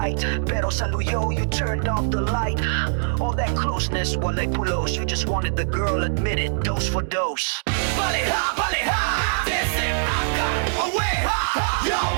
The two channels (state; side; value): silent; left; digital silence